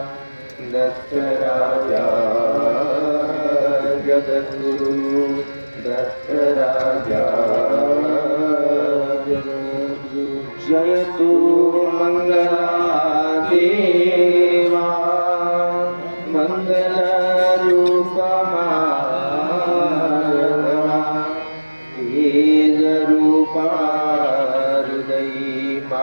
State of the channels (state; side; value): inverted; both; correlation -1.00